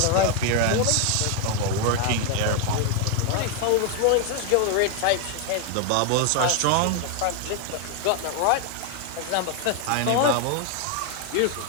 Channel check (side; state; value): both; different; correlation 0.01